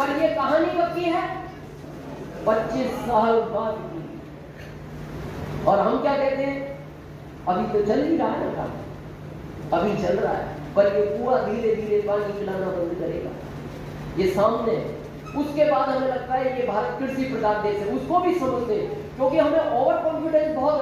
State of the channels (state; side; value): identical; both; correlation 1.00